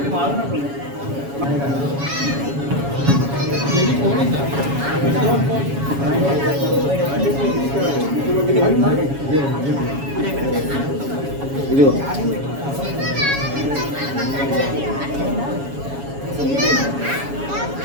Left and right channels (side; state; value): left; late; 7.2 ms